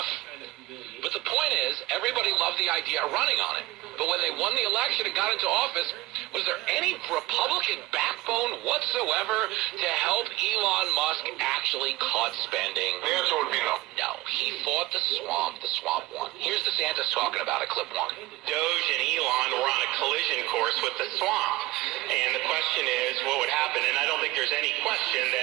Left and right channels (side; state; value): left; quieter; 19.0 dB